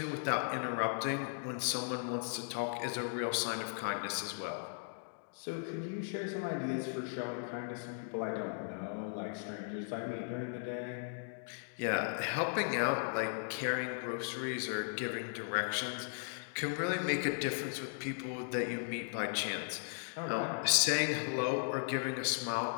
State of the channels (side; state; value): right; silent; digital silence